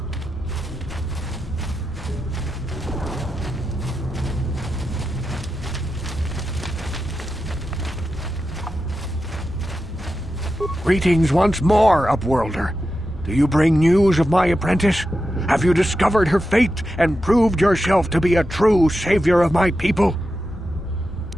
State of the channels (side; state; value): both; normal; correlation 0.90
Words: Greetings once more, Upworlder. Do you bring news of my apprentice? Have you discovered her fate and proved yourself to be a true savior of my people?